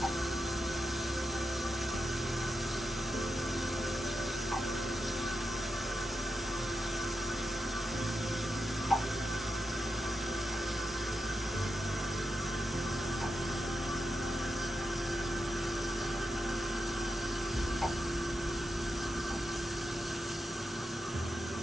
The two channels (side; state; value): both; normal; correlation 0.88